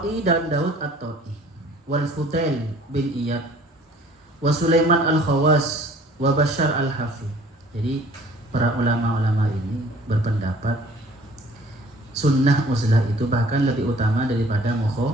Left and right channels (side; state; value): both; normal; correlation 0.53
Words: dan Daud at-Ta'i, wal Fudail bin Iyad, wa Sulaiman al-Khawas, wa Bashar al-Hafi. Jadi para ulama-ulama ini berpendapat sunnah uzlah itu bahkan lebih utama daripada